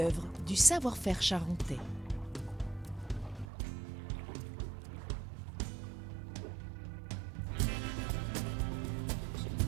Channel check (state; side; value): drops out; left; at 3.5 s